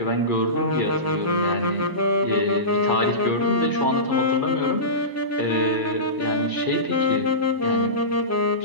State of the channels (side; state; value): left; late; 1.0 ms